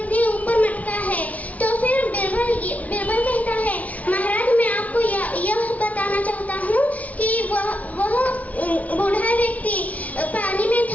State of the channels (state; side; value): late; right; 0.070 ms